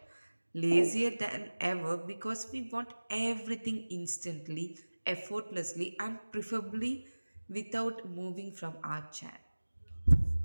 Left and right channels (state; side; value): inverted; both; correlation -1.00